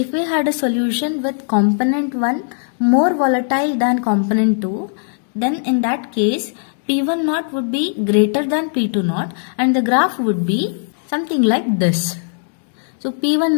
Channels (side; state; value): right; silent; digital silence